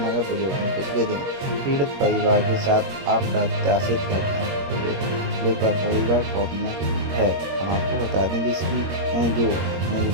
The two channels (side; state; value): left; late; 21 ms